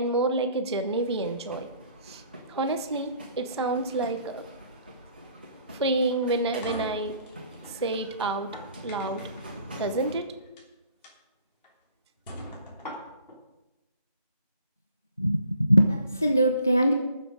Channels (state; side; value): inverted; both; correlation -0.57